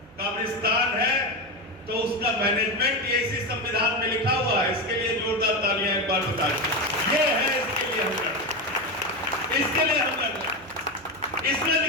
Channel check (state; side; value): noise; right; hum, 26 dB below the sound